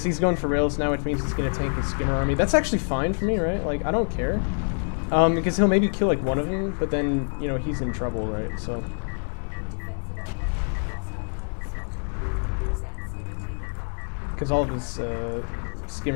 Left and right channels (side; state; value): right; silent; digital silence